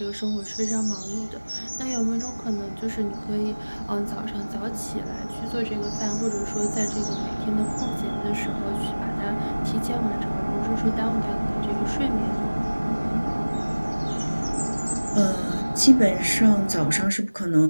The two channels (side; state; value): both; inverted; correlation -1.00